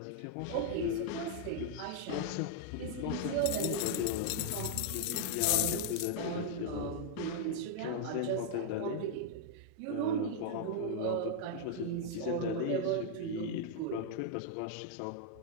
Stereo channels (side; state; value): both; different; correlation 0.00